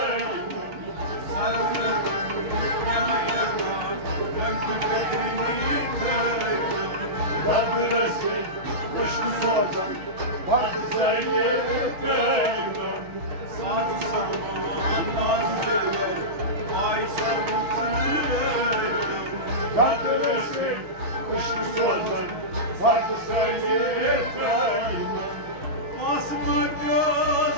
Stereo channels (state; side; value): late; left; 6.0 ms